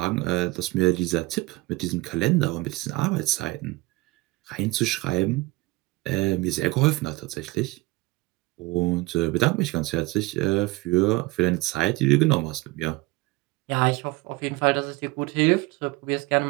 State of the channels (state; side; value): quieter; left; 21.3 dB